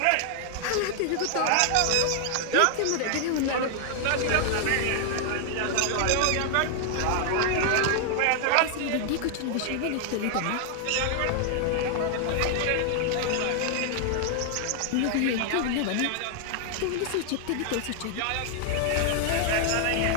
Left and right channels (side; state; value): both; different; correlation 0.00